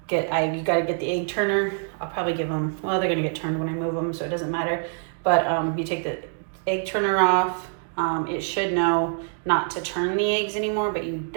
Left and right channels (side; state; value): left; silent; 62 dB below the other